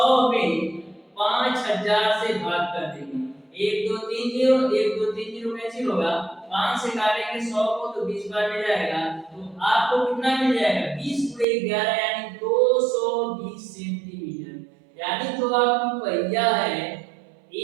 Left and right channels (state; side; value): drops out; left; at 11.5 s